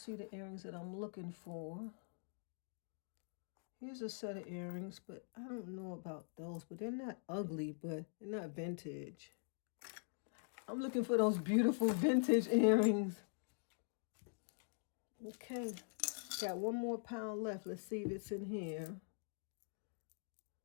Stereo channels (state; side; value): silent; right; digital silence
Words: the earrings that I'm looking for. Here's a set of earrings, but I don't know about those. But they're not ugly, but they're not vintage. I'm looking for those beautiful vintage earrings. Okay. Got one more pound left. Let's see if it's in here.